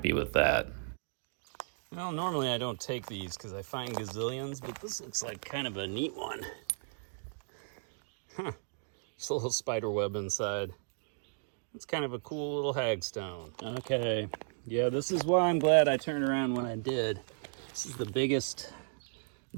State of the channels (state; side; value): silent; left; digital silence